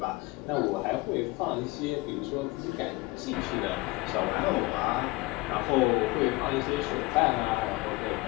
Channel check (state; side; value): quieter; right; 22.3 dB